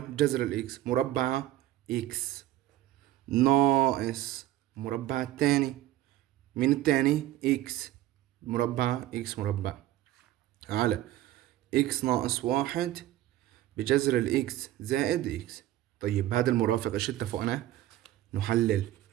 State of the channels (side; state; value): left; quieter; 14.4 dB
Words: جذر الإكس، مربع إكس، ناقص مربع الثاني مين الثاني؟ إكس، مربع إكس مربع، على إكس ناقص واحد بجذر الإكس زائد إكس. طيب هذا المرافق إيش اتفقنا؟ نحلل.